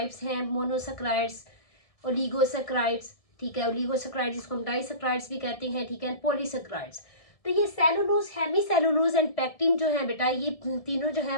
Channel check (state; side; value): late; right; 1.6 ms